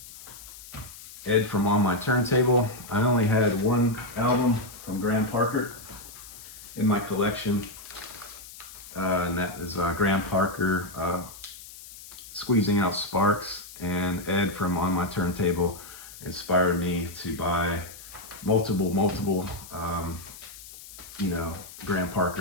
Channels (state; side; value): noise; left; hiss, 16 dB below the sound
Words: Ed from On My Turntable. I only had one album from Graham Parker in my collection, and that is Graham Parker, Squeezing Out Sparks. And Ed from On My Turntable inspired me to buy multiple Graham Parker